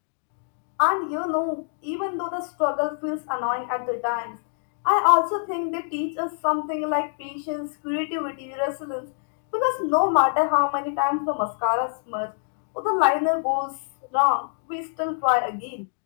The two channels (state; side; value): silent; right; digital silence